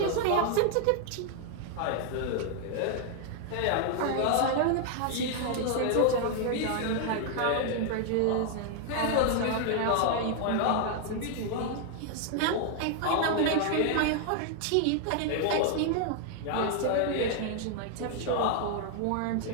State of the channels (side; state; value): both; different; correlation 0.00